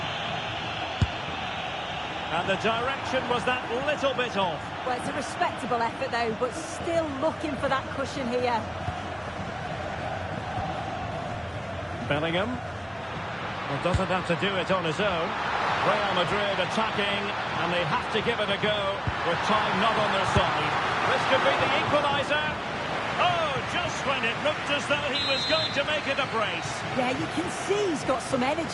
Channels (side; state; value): both; identical; correlation 1.00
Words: And the direction was that little bit off. Well, it's a respectable effort though, but still looking for that cushion here. Bellingham. Well, doesn't have to do it on his own. Real Madrid attacking, and they have to give it a go with time not on their side. This could be the equaliser. Oh, just when it looked as though he was going to make it a brace. Yeah, you can see he's got some